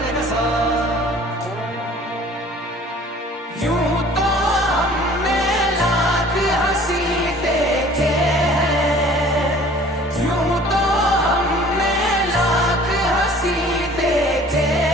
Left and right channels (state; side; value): normal; both; correlation 0.50